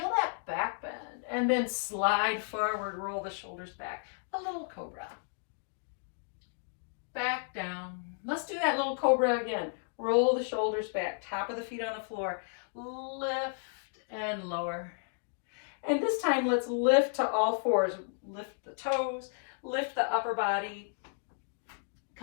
that back bend. And then slide forward, roll the shoulders back. A little cobra. Back down. Let's do that little cobra again. Roll the shoulders back, top of the feet on the floor. Lift and lower. And this time, let's lift to all fours. Lift the toes, lift the upper body.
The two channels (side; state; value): right; silent; digital silence